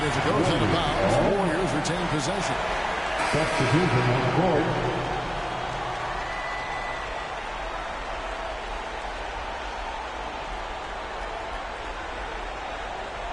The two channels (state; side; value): identical; both; correlation 1.00